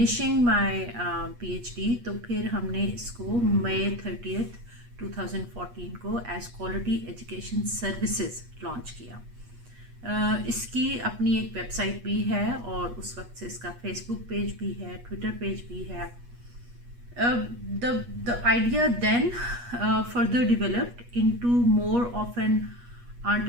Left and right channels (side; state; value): left; late; 8.3 ms